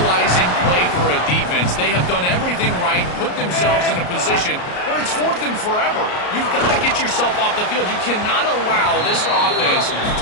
play for a defense. They have done everything right, put themselves in a position where it's 4th and forever. You've got to get yourself off the field. You cannot allow this offense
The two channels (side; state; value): right; late; 33 ms